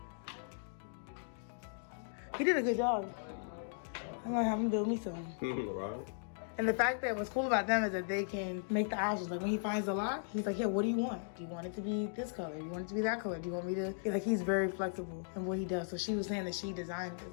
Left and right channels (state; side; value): silent; right; digital silence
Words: He did a good job. I'm gonna have him build me some. Right. And the fact that what's cool about them is that they can make the options. Like when he finds a lot, he's like, yeah, what do you want? Do you want it to be this color? Do you want it to be that color? Do you want me to? He's very flexible in what he does. So she was saying that she designed